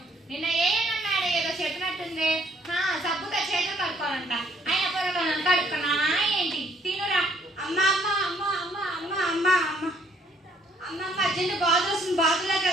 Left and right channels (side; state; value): both; normal; correlation 0.66